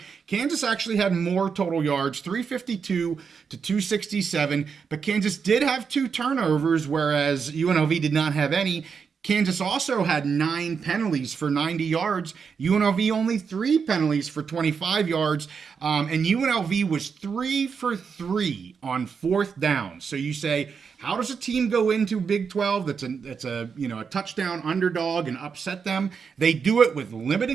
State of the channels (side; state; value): left; quieter; 6.0 dB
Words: Kansas actually had more total yards, 352 to 267, but Kansas did have 2 turnovers, whereas UNLV did not have any. Kansas also had 9 penalties for 90 yards. UNLV only 3 penalties for 25 yards. And UNLV was 3 for 3 on 4th down. So you say, how does a team go into Big 12 that's a touchdown underdog and upset them? They do it with